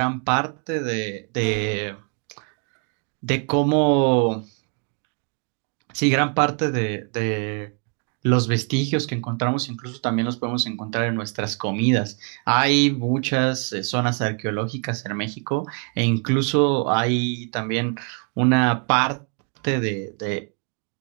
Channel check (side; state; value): left; quieter; 38.3 dB